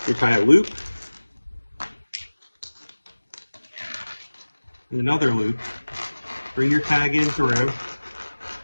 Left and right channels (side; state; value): both; inverted; correlation -1.00